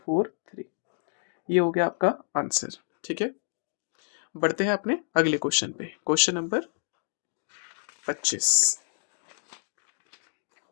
4 3, ये हो गया आपका आंसर। ठीक है, बढ़ते हैं अपने अगले क्वेश्चन पे, क्वेश्चन नंबर 25।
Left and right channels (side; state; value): right; silent; digital silence